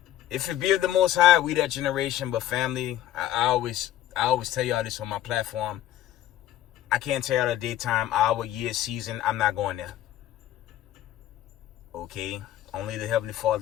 if it be of the Most High, we that generation. But family, I always tell y'all this on my platform. I can't tell y'all the daytime, hour, year, season. I'm not going there. Okay? Only the Heavenly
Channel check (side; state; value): right; quieter; 13.1 dB